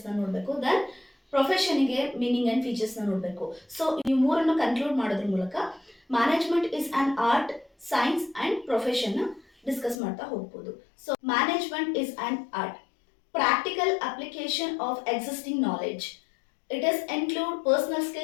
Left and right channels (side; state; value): right; drops out; at 10.0 s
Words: ನೋಡಬೇಕು, ದೆನ್ ಪ್ರೊಫೆಷನ್ಗೆ ಮೀನಿಂಗ್ ಆ್ಯಂಡ್ ಫೀಚರ್ಸ್ನ ನೋಡಬೇಕು. ಸೊ ಈ ಮೂರನ್ನು ಕನ್ಕ್ಲೂಡ್ ಮಾಡೋದ್ರ ಮೂಲಕ management is an art, science and ಪ್ರೊಫೆಷನ್ನ ಡಿಸ್ಕಸ್ ಮಾಡ್ತಾ ಹೋಗ್ಬೋದು. So management is an art, practical application of existing knowledge. It is include personal